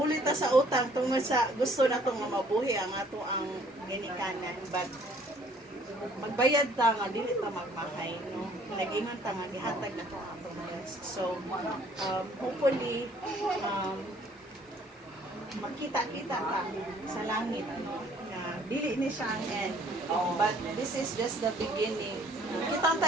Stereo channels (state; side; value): normal; both; correlation 0.59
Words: ta sa utang tungod sa gusto natong mabuhi ang ato ang ginikanan, but magbayad ta nga dili ta magmahay, no? Nag-ingon ta nga gihatag na to ang blessed. So, hopefully, makita-kita ka sa langit, no? Na dili ni siya ang end. But this is just the beginning. Kita